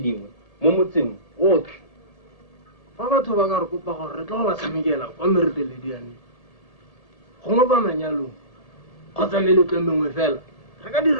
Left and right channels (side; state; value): right; late; 1.8 ms